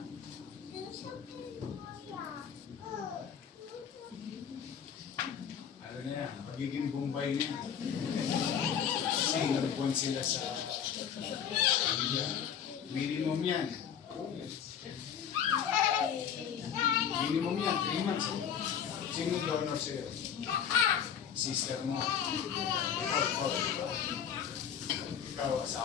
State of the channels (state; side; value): quieter; right; 8.3 dB